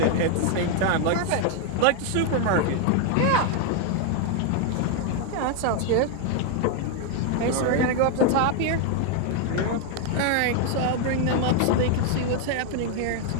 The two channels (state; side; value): different; both; correlation 0.00